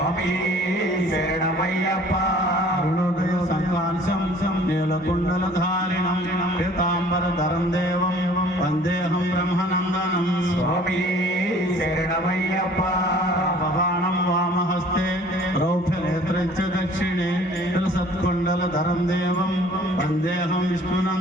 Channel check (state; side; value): normal; both; correlation 0.52